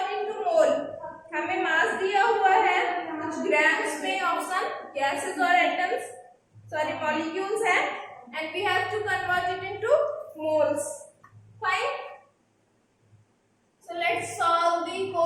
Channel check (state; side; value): identical; both; correlation 1.00